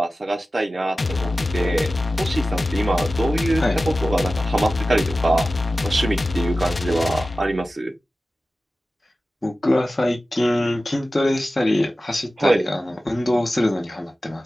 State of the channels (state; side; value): normal; both; correlation 0.95